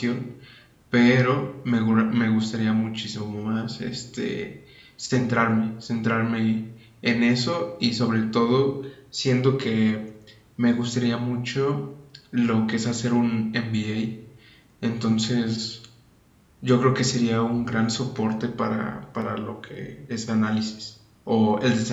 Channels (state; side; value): identical; both; correlation 1.00